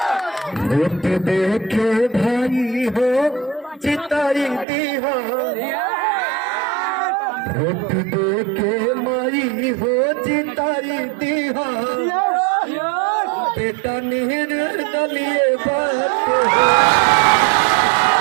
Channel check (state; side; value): drops out; left; at 4.7 s